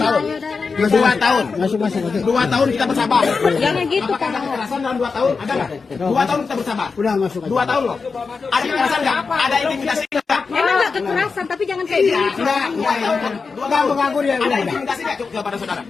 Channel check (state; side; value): quieter; right; 4.8 dB